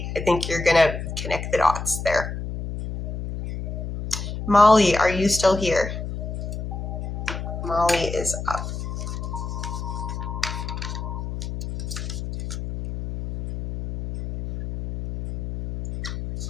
I think you're going to connect the dots there. Molly, are you still here? Molly is up.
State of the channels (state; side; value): noise; left; hum, 6 dB below the sound